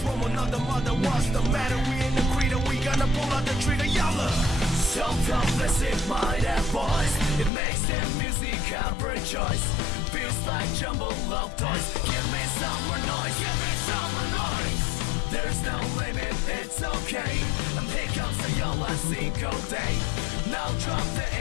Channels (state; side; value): drops out; right; at 7.5 s